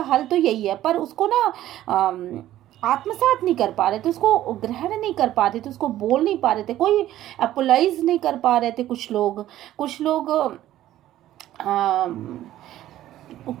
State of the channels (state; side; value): quieter; left; 13.5 dB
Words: हल तो यही है, पर उसको ना आत्मसात नहीं कर पा रहे थे, उसको ग्रहण नहीं कर पा रहे थे, उसको बोल नहीं पा रहे थे, कोई अपोलाइज नहीं कर पा रहे थे। कुछ